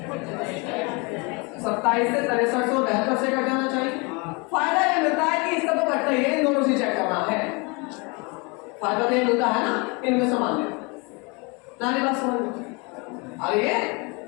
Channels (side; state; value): right; quieter; 29.6 dB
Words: 27 से 63 से 72 से कट जाना चाहिए। फायदा ये मिलता है कि इसका तो कटता ही है, इन दोनों से चेक करना है। फायदा तो ये मिलता है ना इनमें से मान लें नानी बात समझ अरे ये